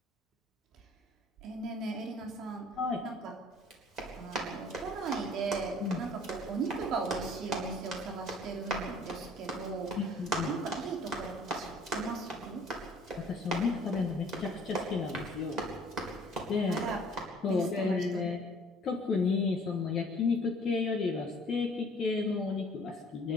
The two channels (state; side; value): normal; both; correlation 0.54